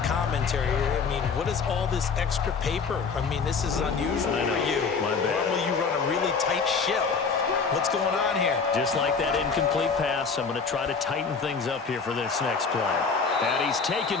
commentary here. I mean, what is all this extra paper? I mean, this is unusual for you. My bad. Normally you run a really tight ship. What's going on here? Just like that incomplete pass, I'm going to try to tighten things up here for this next play. And he's taken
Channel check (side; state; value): right; quieter; 5.2 dB